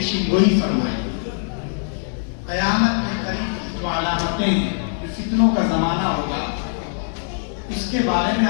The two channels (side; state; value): right; silent; digital silence